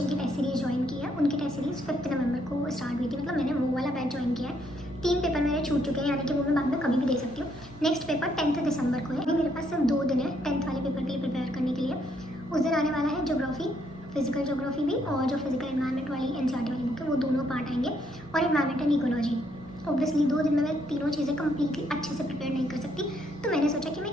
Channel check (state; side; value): normal; both; correlation 0.72